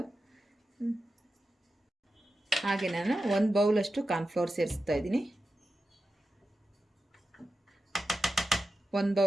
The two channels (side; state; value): both; normal; correlation 0.91